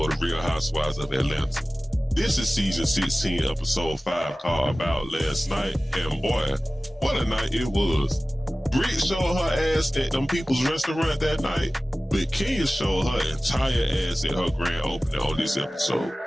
of Real Housewives of Atlanta. This is season 16, episode 5, called About Last Night, and boy, what a night it was. Brit showed her ass at them people's restaurant that night, but Kenya showed her entire ass at her grand opening on this episode.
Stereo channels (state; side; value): normal; both; correlation 0.97